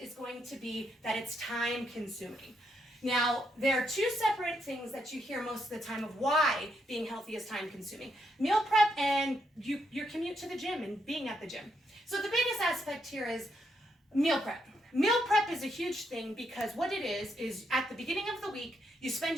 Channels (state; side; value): normal; both; correlation 0.78